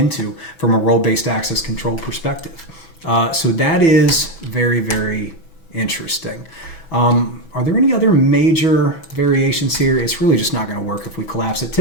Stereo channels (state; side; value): late; right; 6.1 ms